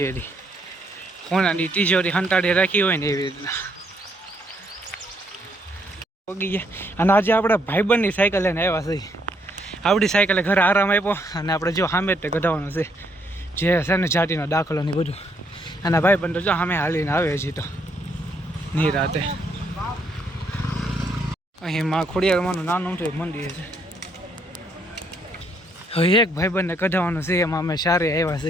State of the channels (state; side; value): normal; both; correlation 0.72